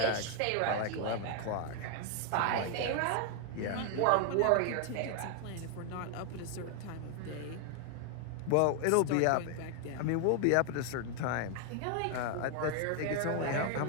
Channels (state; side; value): different; both; correlation 0.00